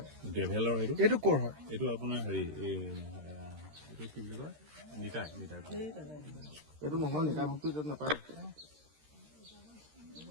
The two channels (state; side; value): late; left; 13 ms